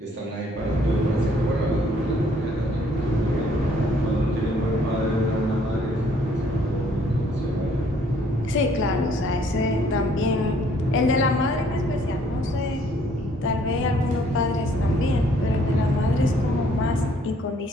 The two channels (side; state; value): both; normal; correlation 0.63